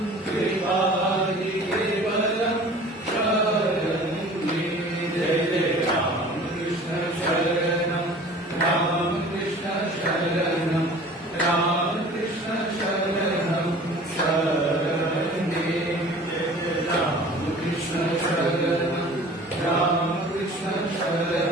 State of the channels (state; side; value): normal; both; correlation 0.45